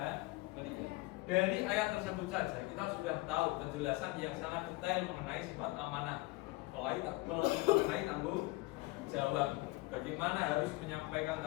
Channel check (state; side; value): quieter; right; 21.4 dB